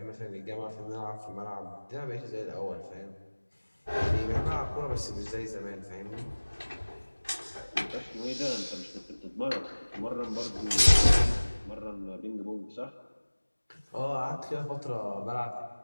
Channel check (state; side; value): inverted; both; correlation -1.00